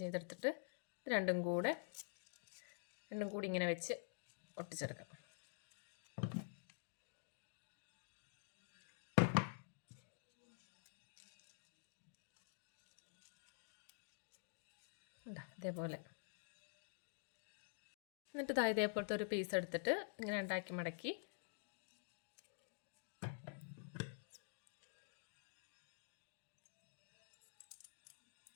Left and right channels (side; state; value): right; silent; digital silence